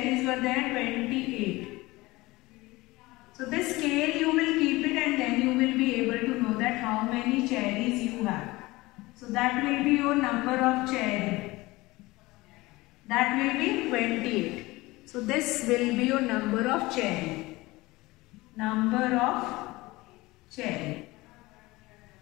were there, 28. So this scale you will keep it and then you will be able to know that how many cherries you have. So that will be your number of cherry. That will be 28. So this will be your number of cherry. Number of cherry.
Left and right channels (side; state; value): right; quieter; 20.7 dB